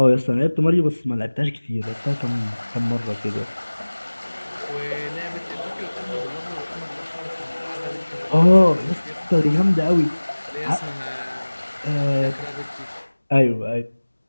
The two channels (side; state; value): both; inverted; correlation -1.00